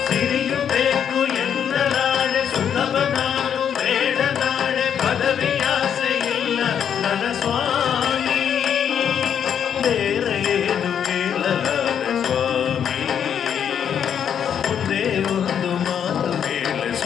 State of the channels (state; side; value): quieter; right; 8.4 dB